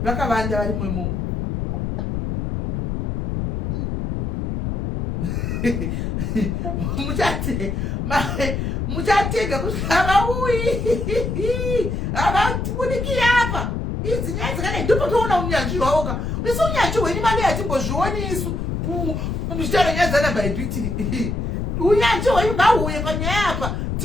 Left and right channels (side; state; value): left; noise; rumble, 2 dB below the sound